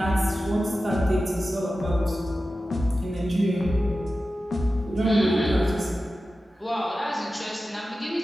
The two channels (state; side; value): normal; both; correlation 0.94